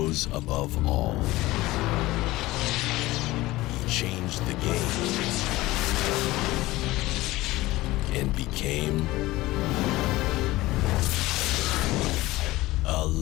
rose above all. He changed the game and became a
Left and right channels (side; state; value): right; quieter; 18.4 dB